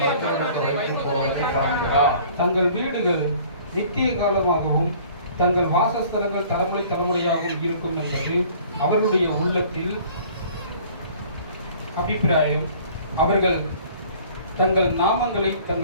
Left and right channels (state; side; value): inverted; both; correlation -0.52